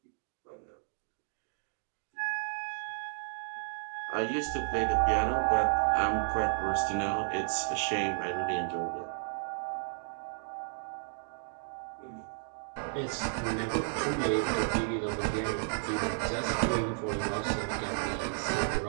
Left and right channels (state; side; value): silent; left; 56 dB below the other